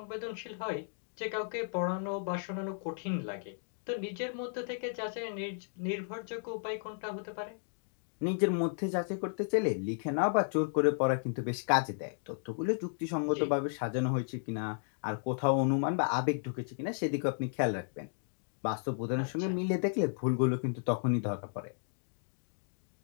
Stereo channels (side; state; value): right; silent; digital silence